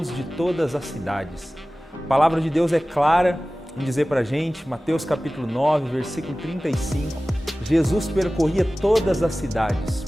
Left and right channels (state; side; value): normal; both; correlation 0.97